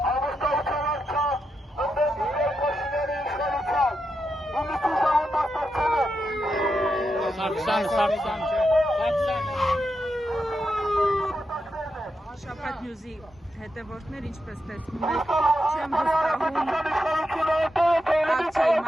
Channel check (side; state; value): both; normal; correlation 0.86